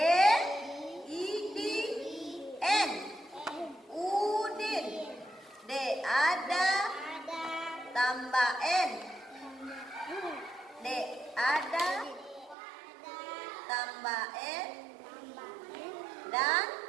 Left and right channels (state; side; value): drops out; left; at 12.6 s